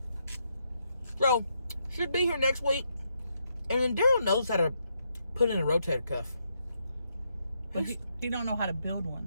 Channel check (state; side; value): inverted; both; correlation -0.79